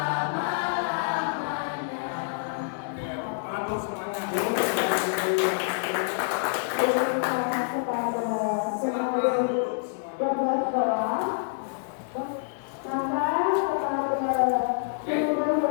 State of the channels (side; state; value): right; silent; digital silence